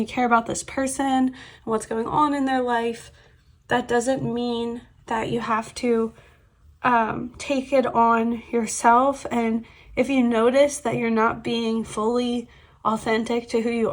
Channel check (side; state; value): both; identical; correlation 1.00